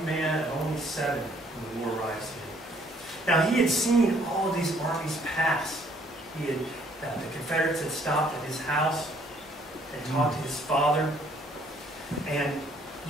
man at only 7 when the war arrives here. Now, he had seen all of these armies pass. He had, the Confederates had stopped at his house and talked to his father. And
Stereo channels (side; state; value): both; normal; correlation 0.63